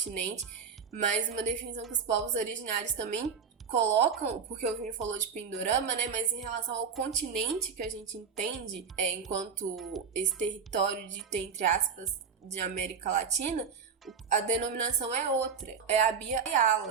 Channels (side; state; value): left; quieter; 6.3 dB